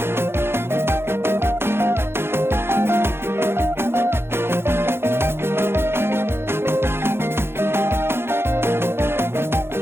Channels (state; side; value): late; left; 0.11 ms